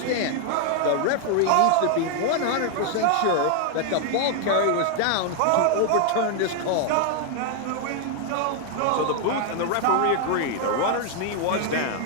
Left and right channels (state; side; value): different; both; correlation 0.00